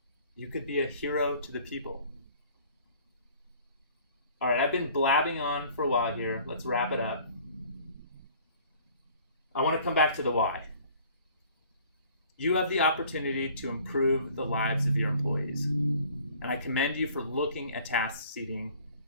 You could be a hero to the people. All right, I've been blabbing on for a while here. Let's wrap it up. I want to come back to the why. You have the opportunity to improve the lives of your employees. And I commend you for looking at task seating,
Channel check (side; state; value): both; inverted; correlation -0.53